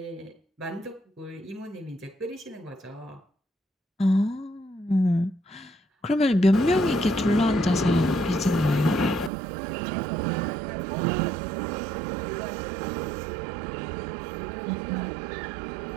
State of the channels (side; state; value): left; drops out; at 9.3 s